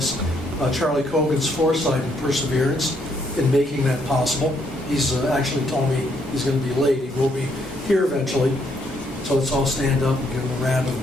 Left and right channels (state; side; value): normal; both; correlation 0.72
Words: Charlie Cogan's foresight and perseverance in making that possible. He's actually told me he's going to be late. He will be here eventually. So let's all stand up and give him a round